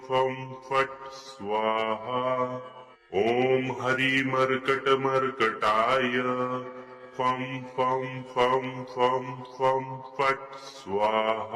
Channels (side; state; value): both; identical; correlation 1.00